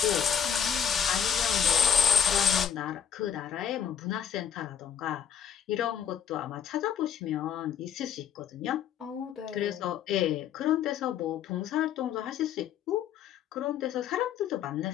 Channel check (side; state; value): right; quieter; 8.1 dB